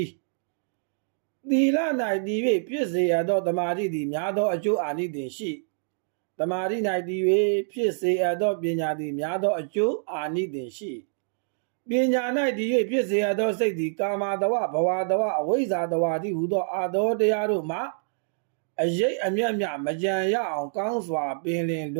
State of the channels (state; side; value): silent; left; digital silence